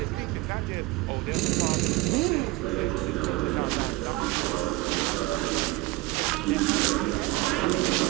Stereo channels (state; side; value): quieter; left; 19.8 dB